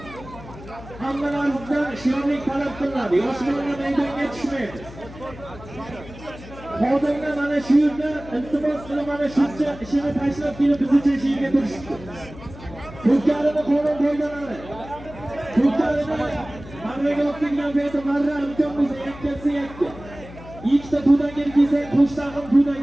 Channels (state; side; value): noise; left; hum, 16 dB below the sound